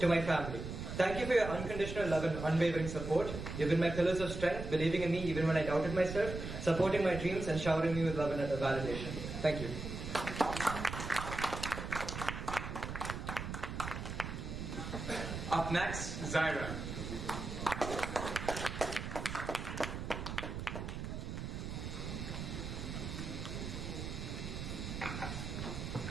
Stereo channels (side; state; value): right; noise; rumble, 6 dB below the sound